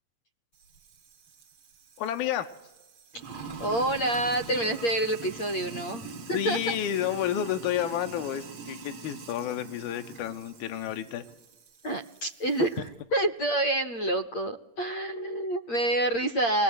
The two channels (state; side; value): late; right; 8.6 ms